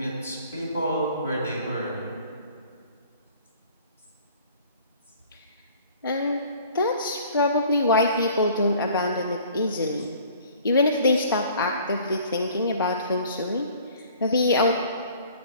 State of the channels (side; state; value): both; inverted; correlation -0.52